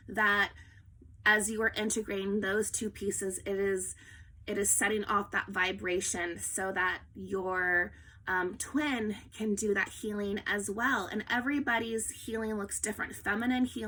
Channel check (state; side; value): identical; both; correlation 1.00